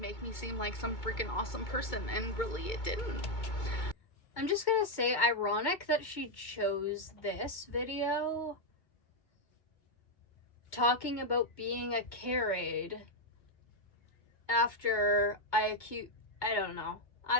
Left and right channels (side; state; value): right; late; 2.2 ms